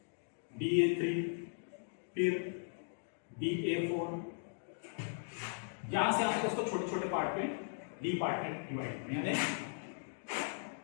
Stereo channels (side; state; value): right; silent; digital silence